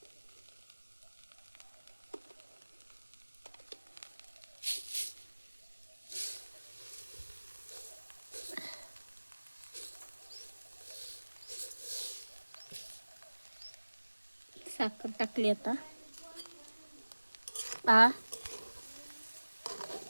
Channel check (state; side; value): inverted; both; correlation -1.00